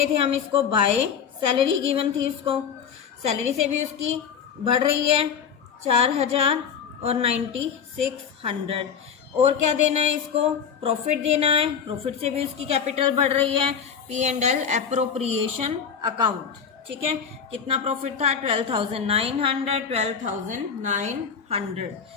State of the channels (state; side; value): quieter; right; 7.1 dB